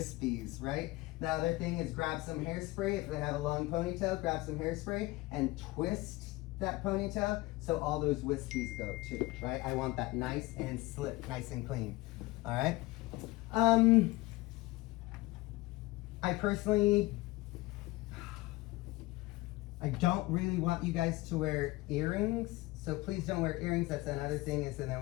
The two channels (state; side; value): quieter; right; 20.3 dB